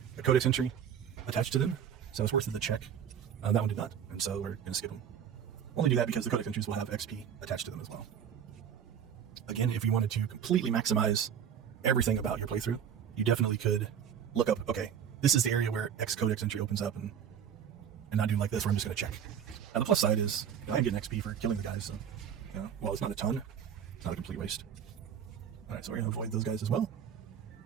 codex entry attached to them, so it's worth the check. That one did not, and so we're going to skip them. Only do that because the codex entries will have XP attached to them as well. Again, if you wanted to completely maximize everything about your playthrough, you definitely could look up, okay, this is the area where X codex entry opens up, and not do like this where I'm just going to check. Now the plus side is, I'm getting XP for killing the guys, so while it's not a ton, it's not a complete waste. Alright, so we're going to avoid those guys as well,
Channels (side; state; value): left; quieter; 8.4 dB